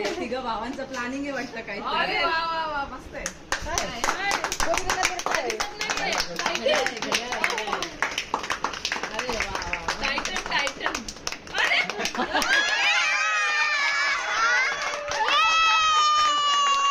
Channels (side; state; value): both; identical; correlation 1.00